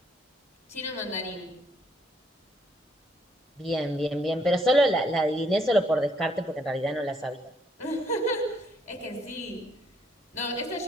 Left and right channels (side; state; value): both; normal; correlation 0.69